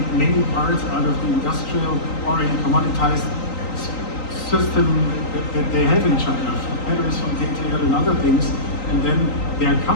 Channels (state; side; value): late; right; 3.9 ms